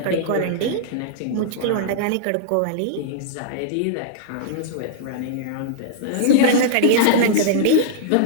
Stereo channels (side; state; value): both; different; correlation -0.02